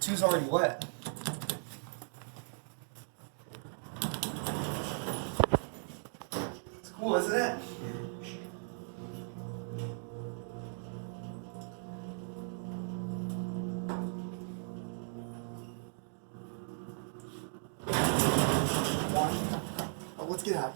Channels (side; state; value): left; silent; digital silence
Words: already wet. It's cool, isn't it? Oh, let's get out